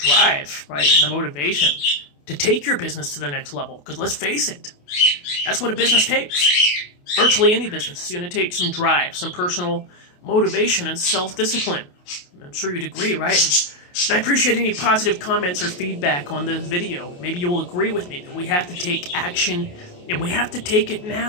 right, and the motivation to take your business to the next level. Because let's face it, that's what a business takes. Virtually any business is going to take some drive, some personal motivation, and self-discipline. I'm sure you'd agree, right? And I appreciate any positive comments or feedback on this video. Maybe you'll agree with me that we have to take action, and we have to take it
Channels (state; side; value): late; right; 28 ms